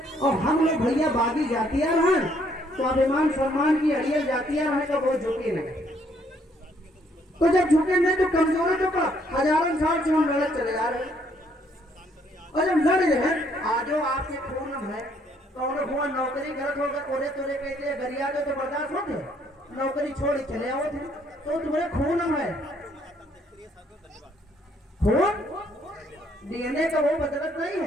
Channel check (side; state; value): both; normal; correlation 0.67